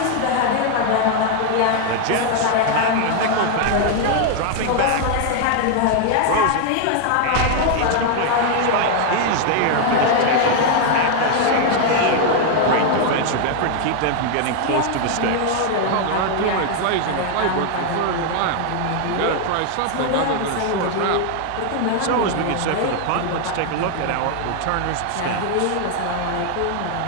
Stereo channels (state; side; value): different; both; correlation 0.00